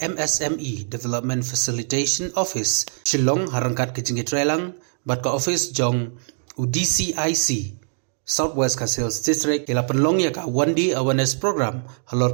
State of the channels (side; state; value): left; silent; digital silence